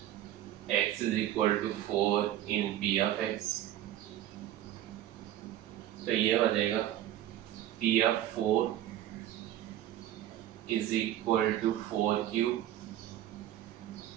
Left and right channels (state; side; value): quieter; left; 12.6 dB